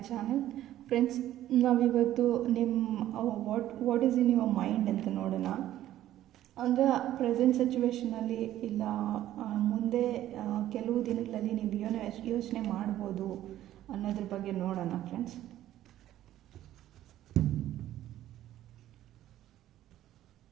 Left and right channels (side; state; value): left; quieter; 13.1 dB